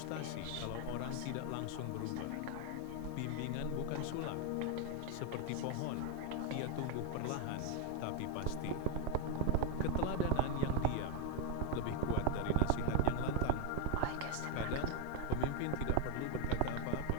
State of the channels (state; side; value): different; both; correlation 0.00